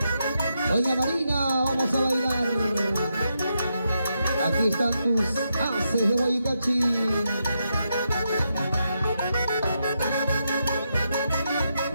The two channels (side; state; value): both; inverted; correlation -0.83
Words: Doña Marina, vamos a bailar. Aquí están tus haces de Guaycachi.